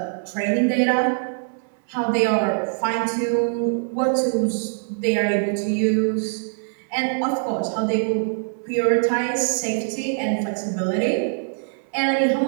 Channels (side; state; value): left; silent; 63 dB below the other